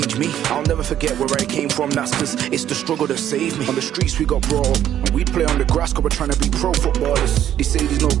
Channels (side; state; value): left; quieter; 10.9 dB